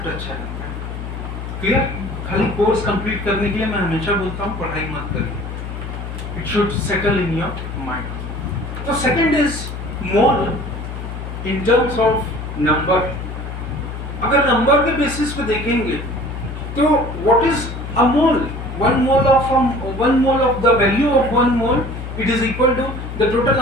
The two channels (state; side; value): noise; left; hum, 7 dB below the sound